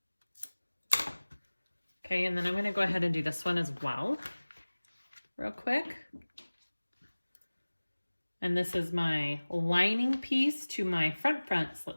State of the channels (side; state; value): both; inverted; correlation -1.00